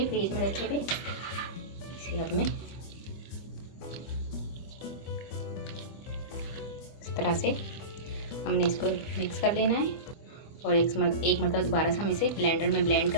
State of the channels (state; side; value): late; right; 24 ms